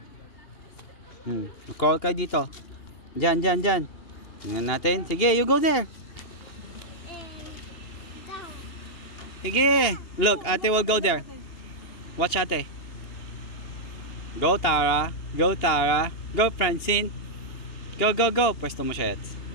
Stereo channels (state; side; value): late; right; 2.7 ms